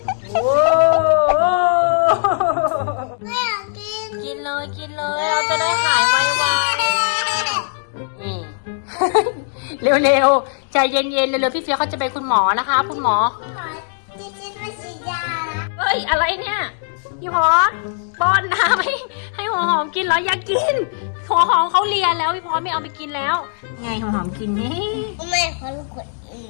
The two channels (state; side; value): silent; right; digital silence